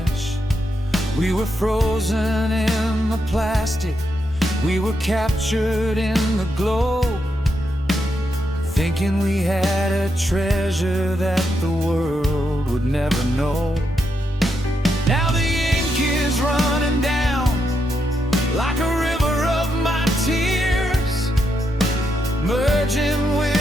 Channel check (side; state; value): both; normal; correlation 0.82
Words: We were frozen in the plastic, we were captured in the glow, thinking we had a treasure that the world would never know. Now the ink is running down like a river of my tears, merging